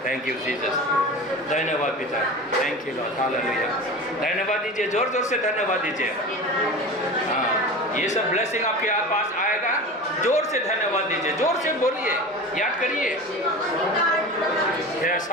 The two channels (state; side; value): normal; both; correlation 0.32